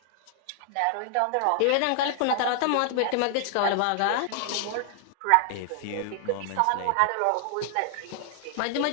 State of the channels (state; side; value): different; both; correlation 0.00